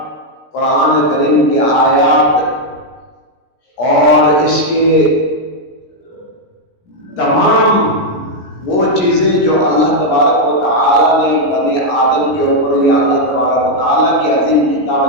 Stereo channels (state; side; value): late; right; 17 ms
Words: قرآن کریم کی آیات اور اس کے تمام وہ چیزیں جو اللہ تبارک و تعالیٰ نے بنی آدم کے اوپر یا اللہ تبارک و تعالیٰ کی عظیم کتاب